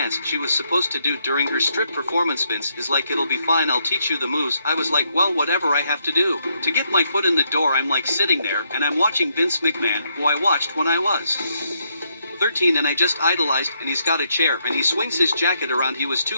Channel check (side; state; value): both; inverted; correlation -0.77